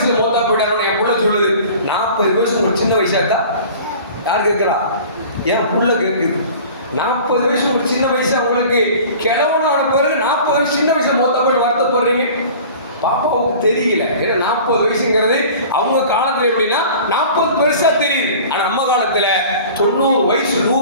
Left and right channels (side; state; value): both; inverted; correlation -0.43